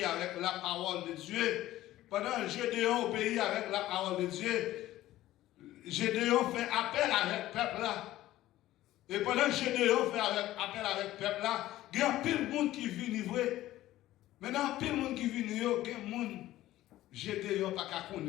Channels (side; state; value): right; quieter; 15.1 dB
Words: avec la parole de Dieu. Pendant que Gédéon obéit avec la parole de Dieu, Gédéon fait appel avec le peuple là. Et pendant que Gédéon fait appel avec le peuple là, il y a pile de monde qui vient livrer. Maintenant, pile de monde qui vient livrer, il y a des gens Gédéon pas qu'à